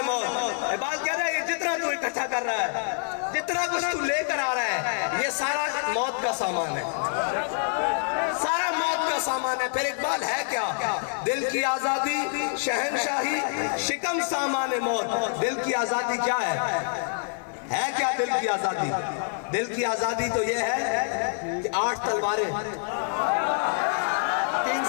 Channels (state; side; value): silent; right; digital silence